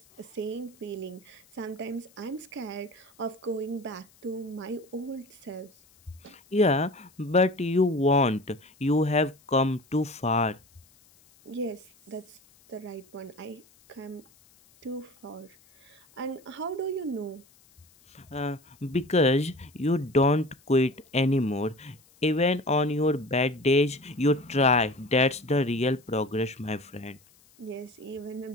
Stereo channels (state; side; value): noise; left; hiss, 29 dB below the sound